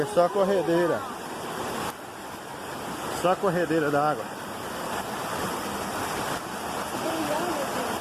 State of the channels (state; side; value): identical; both; correlation 1.00